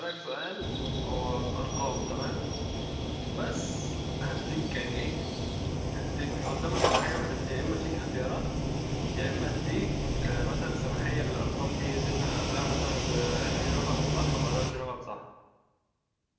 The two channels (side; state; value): both; identical; correlation 1.00